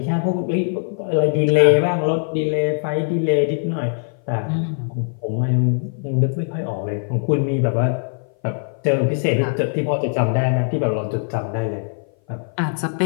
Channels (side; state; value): right; silent; 58 dB below the other